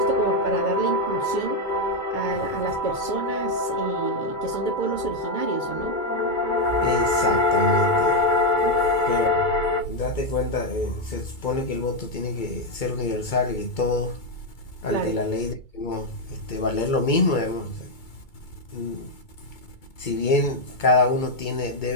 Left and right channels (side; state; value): right; late; 2.2 ms